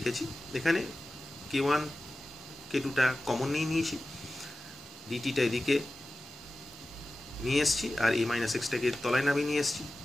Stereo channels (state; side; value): normal; both; correlation 0.95